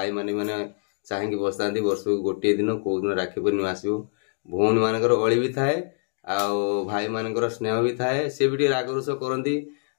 मैंने चाहेंगे बसता वर्ष को गोटे दिन कौ दिन राखी पूर्णिमा आसो भौणी मानकर अली भी थाए भाई मानकर स्नेह भी थाए सी भी रागरुष करती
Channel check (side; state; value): right; silent; 62 dB below the other